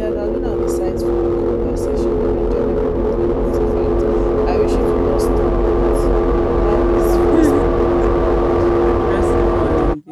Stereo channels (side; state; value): both; identical; correlation 1.00